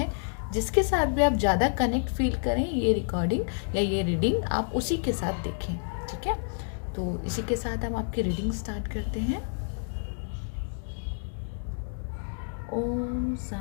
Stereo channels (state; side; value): silent; right; digital silence